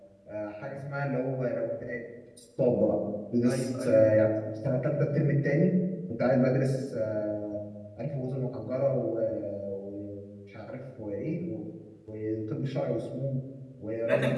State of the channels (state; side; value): identical; both; correlation 1.00